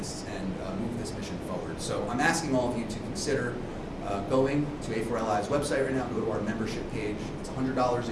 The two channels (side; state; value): both; identical; correlation 1.00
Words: and move this mission forward. So I'm asking all of you to consider going to A4LI's website right now, go to our membership page. It's $100